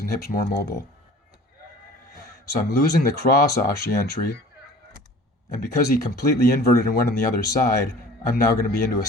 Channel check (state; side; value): normal; both; correlation 0.46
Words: hips more mobile. So I'm losing the cross ashi entry, and because he completely inverted and went on the other side, I'm now going to be into a